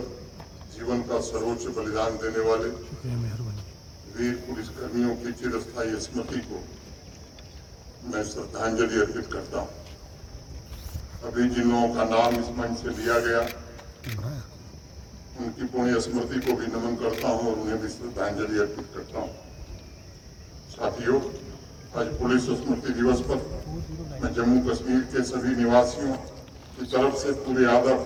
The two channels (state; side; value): identical; both; correlation 1.00